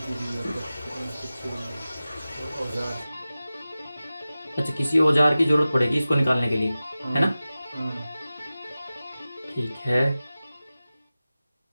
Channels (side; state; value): both; inverted; correlation -0.96